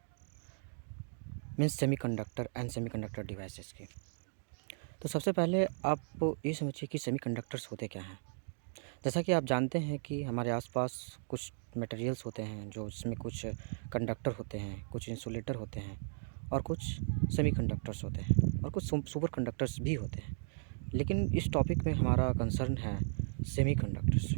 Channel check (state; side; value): silent; left; digital silence